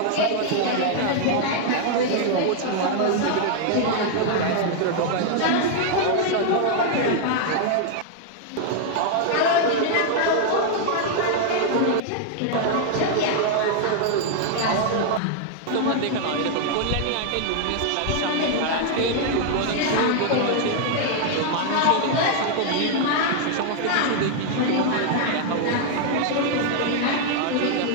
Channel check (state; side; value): different; both; correlation 0.00